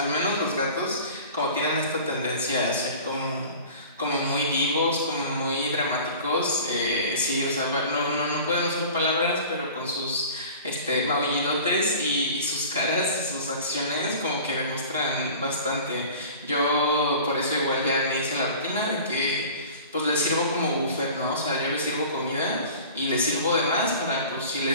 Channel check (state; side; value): inverted; both; correlation -0.41